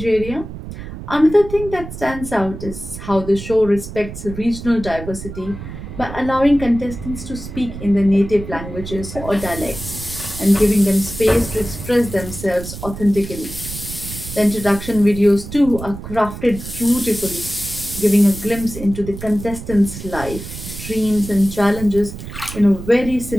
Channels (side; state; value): right; noise; rumble, 11 dB below the sound